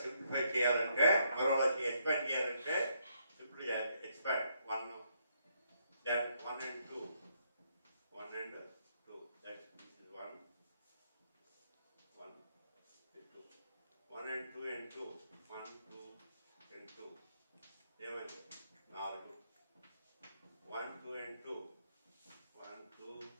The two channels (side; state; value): both; inverted; correlation -0.74